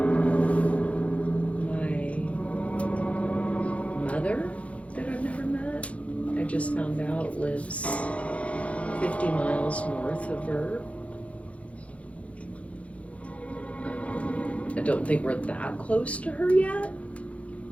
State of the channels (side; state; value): right; late; 0.064 ms